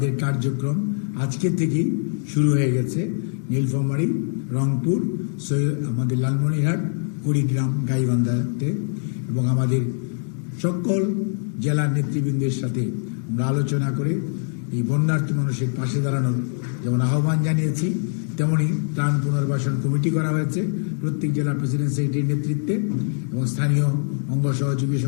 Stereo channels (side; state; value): right; silent; digital silence